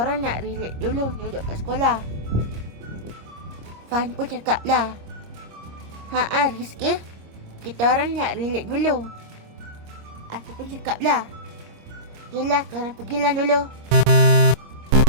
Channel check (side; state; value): left; late; 26 ms